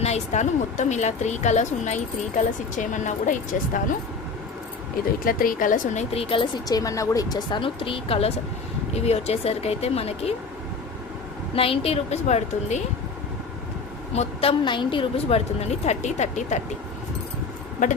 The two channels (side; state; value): right; quieter; 4.4 dB